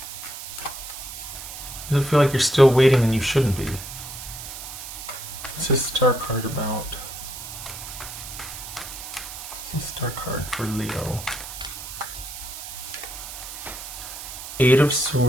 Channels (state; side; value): noise; right; hiss, 10 dB below the sound